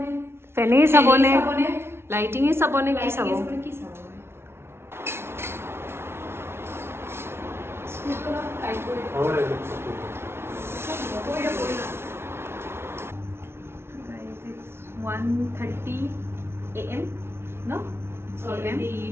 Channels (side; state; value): left; late; 0.12 ms